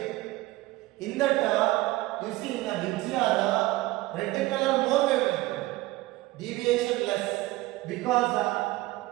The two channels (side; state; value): left; quieter; 18.6 dB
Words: In that, you see in a VGR, red color more wavelength, deviation less, because